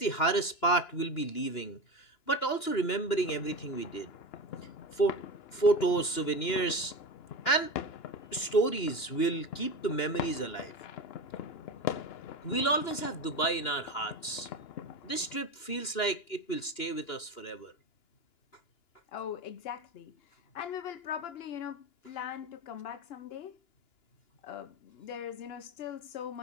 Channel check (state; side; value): late; right; 2.9 ms